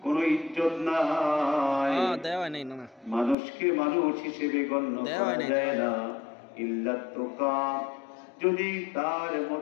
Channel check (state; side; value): drops out; right; at 3.4 s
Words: কোনো ইজ্জত নাই, মানুষকে মানুষ হিসেবে গণ্য করা যায় না ইল্লাত্তুকা, যদি তার